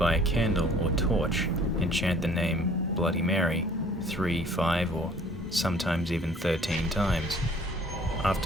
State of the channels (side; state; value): both; normal; correlation 0.55